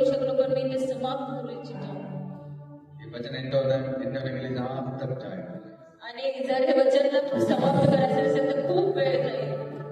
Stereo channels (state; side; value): identical; both; correlation 1.00